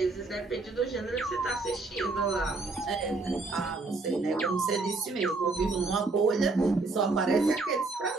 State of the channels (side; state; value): left; quieter; 3.6 dB